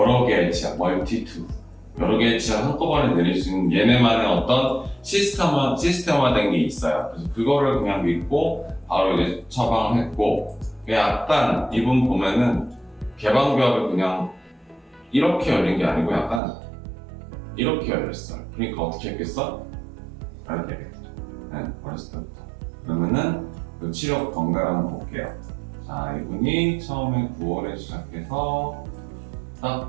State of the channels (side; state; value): left; drops out; at 16.4 s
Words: 개의 치아, multi-tooth. 여러 개의 치아를 한꺼번에 내릴 수 있는 얘네만의 어떤 시스템화된 게 있어요. 그래서 그거를 그냥 믿고 바로 이제 처방을 했고, 약간 이분 보면은 개방교합을 그냥 이렇게 열린 게 아니고 약간 이렇게 열렸어요. 그러니까 어떻게 했겠어? 이렇게 했겠죠. 네, 어렸을 때부터. 그러면은 그 치료 경과를 한번 볼게요. 자, 이분이 처음에 9월에 시작해서